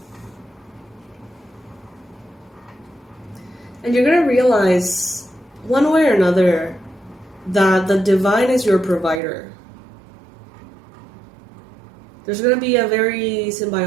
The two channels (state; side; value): drops out; left; at 9.2 s